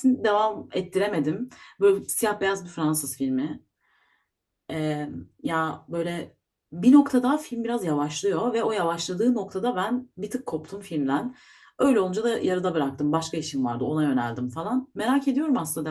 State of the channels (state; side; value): identical; both; correlation 1.00